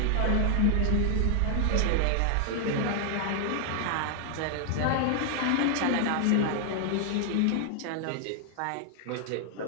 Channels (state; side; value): different; both; correlation 0.00